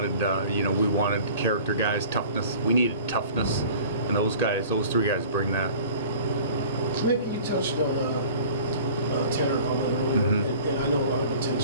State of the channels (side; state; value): both; inverted; correlation -0.44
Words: we wanted character guys, toughness. We needed toughness, and those three guys bring that. Maybe you touched on Tanner earlier, and I know a lot of